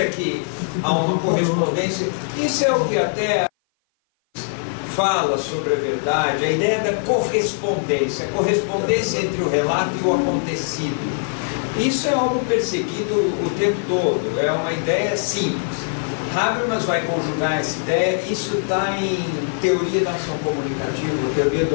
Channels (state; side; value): silent; right; 56 dB below the other